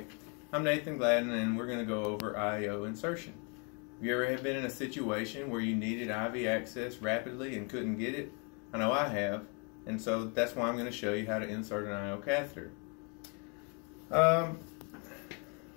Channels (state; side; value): quieter; right; 35.4 dB